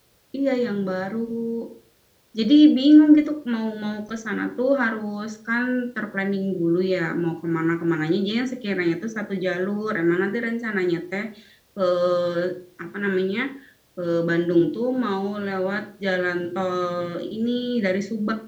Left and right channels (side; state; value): both; identical; correlation 1.00